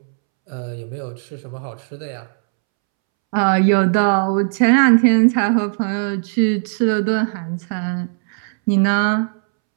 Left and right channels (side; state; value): left; silent; 67 dB below the other